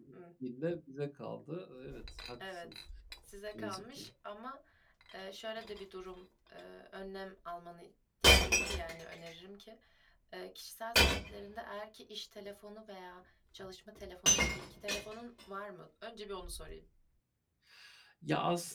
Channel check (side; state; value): both; identical; correlation 1.00